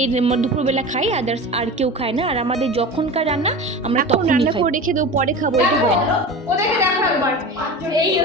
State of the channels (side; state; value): both; normal; correlation 0.31